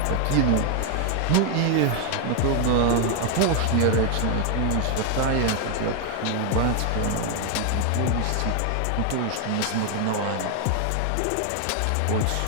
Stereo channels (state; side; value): different; both; correlation 0.00